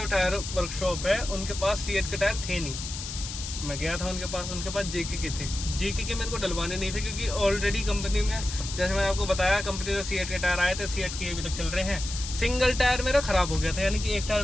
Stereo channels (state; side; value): noise; left; hiss, 8 dB below the sound